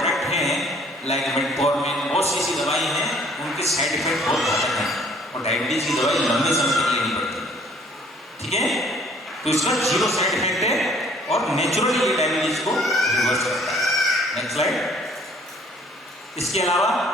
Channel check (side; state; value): both; normal; correlation 0.58